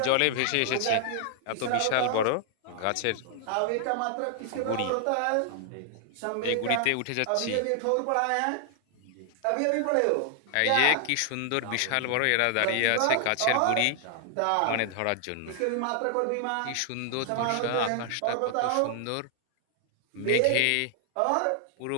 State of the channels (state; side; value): different; both; correlation 0.00